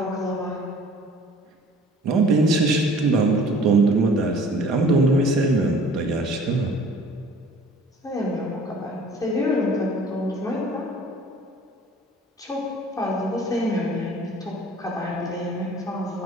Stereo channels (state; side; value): normal; both; correlation 0.50